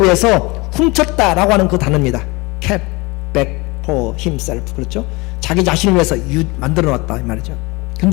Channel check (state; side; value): quieter; right; 24.6 dB